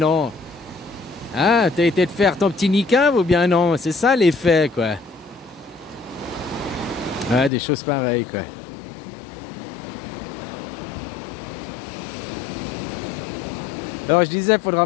Ah, t'as été de faire ton petit niqab ou bien non? C'est ça les faits, quoi. Ah, des choses pareilles, quoi. Alors je disais, il faudra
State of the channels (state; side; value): drops out; right; at 7.5 s